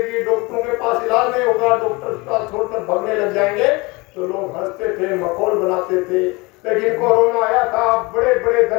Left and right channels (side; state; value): right; quieter; 25.0 dB